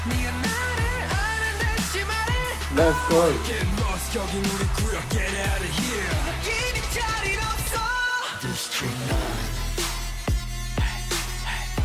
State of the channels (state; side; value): identical; both; correlation 1.00